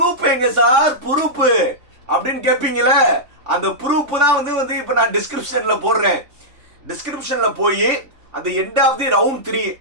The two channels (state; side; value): late; left; 3.5 ms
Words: எங்க சார் ப்ரூஃப் அப்படின்னு கேட்பீங்கள. அந்த ப்ரூஃப் தான் வந்து இப்ப நான் டிஸ்கிரிப்ஷன்ல போடுறேன். டிஸ்கிரிப்ஷன்ல போய் அந்த எண்ட் ஆஃப் தி ரவுண்ட் 3